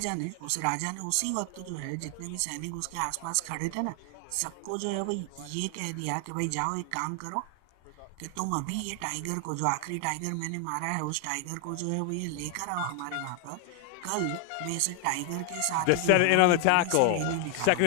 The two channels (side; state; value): both; different; correlation 0.00